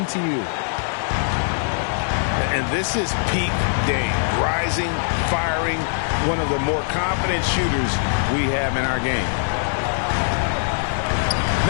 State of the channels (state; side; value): silent; right; digital silence